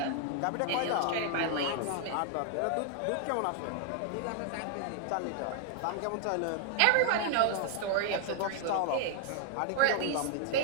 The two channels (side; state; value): both; different; correlation 0.00